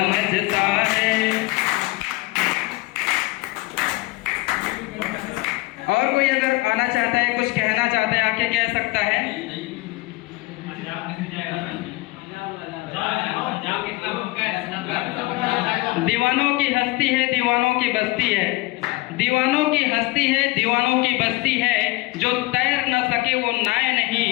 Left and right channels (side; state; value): right; quieter; 22.2 dB